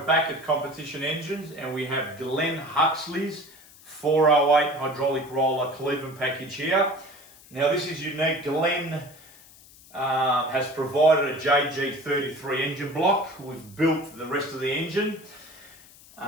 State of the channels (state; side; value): noise; left; hiss, 23 dB below the sound